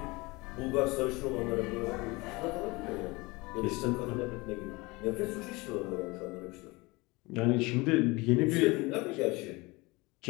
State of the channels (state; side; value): quieter; right; 24.0 dB